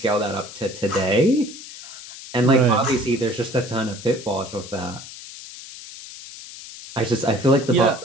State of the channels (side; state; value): left; noise; hiss, 14 dB below the sound